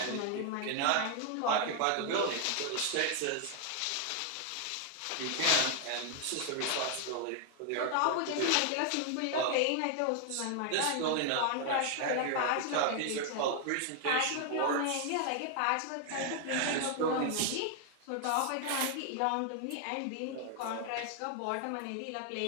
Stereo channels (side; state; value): both; different; correlation 0.00